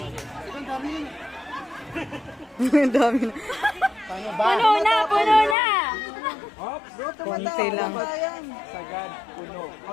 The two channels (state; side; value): drops out; right; at 5.6 s